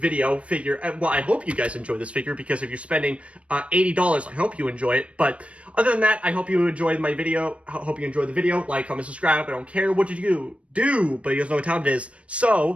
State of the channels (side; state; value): left; late; 0.062 ms